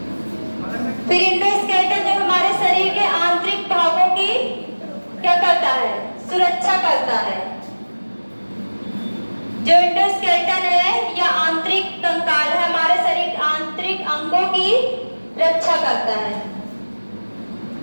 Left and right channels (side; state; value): both; inverted; correlation -1.00